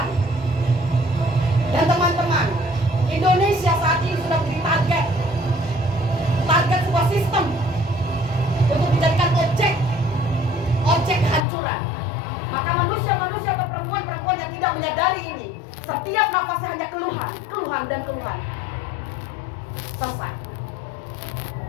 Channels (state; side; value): drops out; right; at 11.5 s